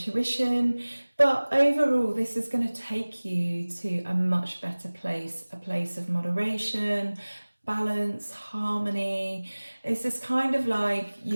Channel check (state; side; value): inverted; both; correlation -1.00